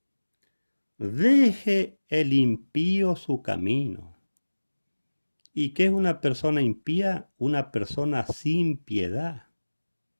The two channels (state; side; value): inverted; both; correlation -1.00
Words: Deje el impío su camino. ¿Y qué es una persona impía? Una persona sin piedad,